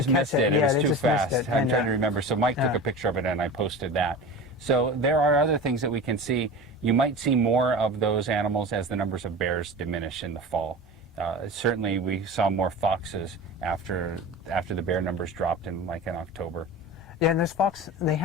catch missed it. It Yeah, was they too just fast. missed it. I'm And, trying to remember. So Mike took a picture of it and I posted that. So there are other things that we can see. You might see more of those animals as the numbers of bears diminish in the fall. Certainly we saw more foxes after the bear numbers dropped in October. Yeah, and those fox, they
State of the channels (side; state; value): both; normal; correlation 0.32